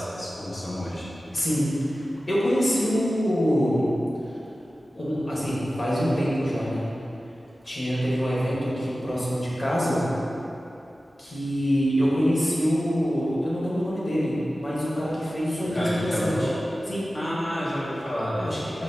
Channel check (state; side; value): normal; both; correlation 0.95